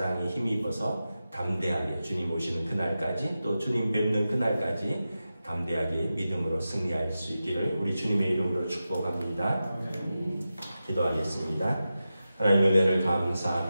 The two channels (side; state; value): both; inverted; correlation -0.92